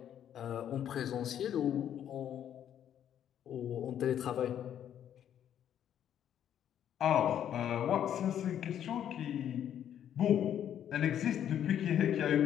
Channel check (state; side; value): quieter; right; 10.0 dB